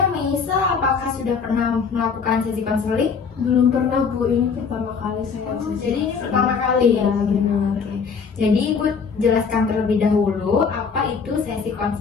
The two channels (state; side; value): quieter; right; 5.7 dB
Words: Meisa apakah sudah pernah melakukan sesi konseling? Belum pernah Bu, ini pertama kali saya. Jadi ini pertama kali ya. Benar. Oke. Jadi Ibu jelaskan terlebih dahulu apa itu sesi